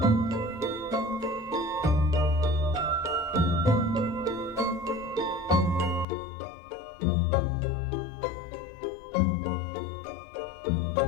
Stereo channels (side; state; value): right; drops out; at 6.1 s